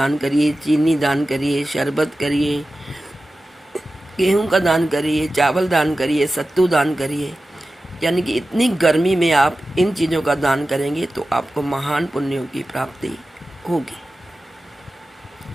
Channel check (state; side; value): normal; both; correlation 0.94